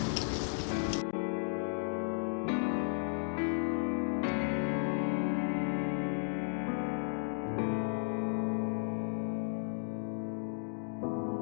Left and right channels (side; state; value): right; silent; digital silence